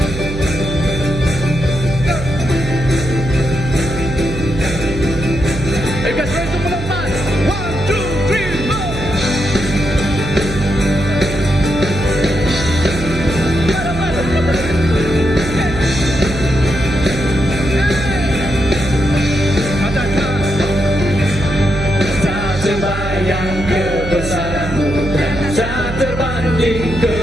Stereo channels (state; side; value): noise; right; hum, 7 dB below the sound